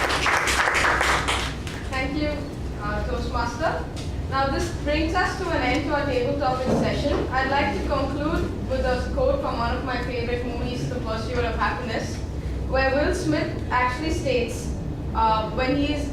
Thank you, Toastmaster. Now this brings us to an end to our table topic session. I'd like to conclude with a quote from one of my favorite movies, The Pursuit of Happiness, where Will Smith actually states,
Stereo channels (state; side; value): identical; both; correlation 1.00